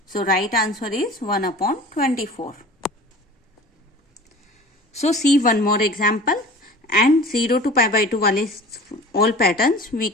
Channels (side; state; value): both; normal; correlation 0.41